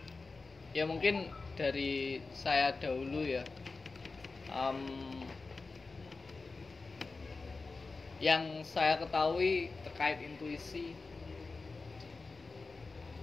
Ya mungkin dari saya dahulu ya. Yang saya ketahui terkait intuisi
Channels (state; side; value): quieter; right; 4.0 dB